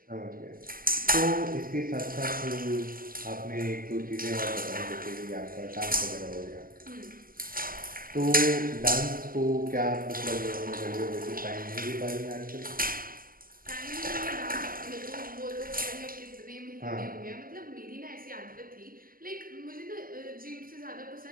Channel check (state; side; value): late; left; 0.42 ms